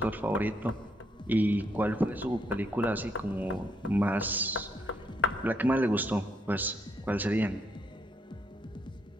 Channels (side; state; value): both; normal; correlation 0.74